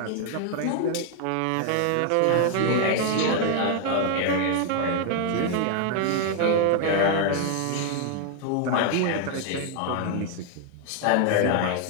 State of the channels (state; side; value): different; both; correlation 0.00